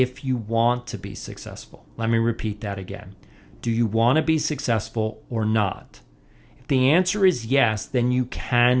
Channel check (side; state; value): both; identical; correlation 1.00